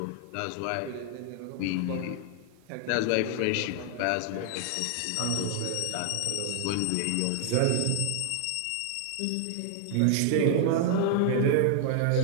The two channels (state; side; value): different; both; correlation 0.00